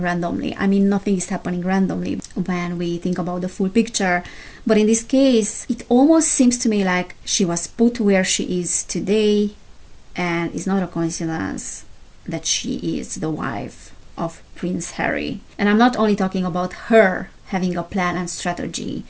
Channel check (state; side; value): identical; both; correlation 1.00